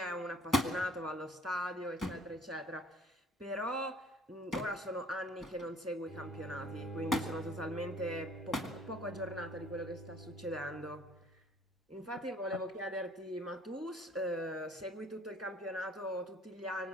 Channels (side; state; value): both; normal; correlation 0.55